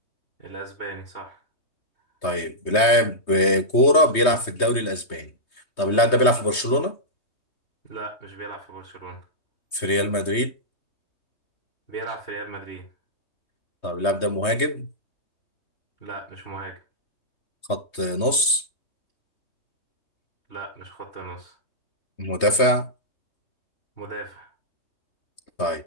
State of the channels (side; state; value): right; late; 3.2 ms